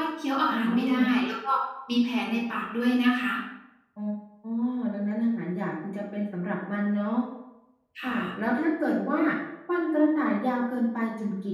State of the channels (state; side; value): identical; both; correlation 1.00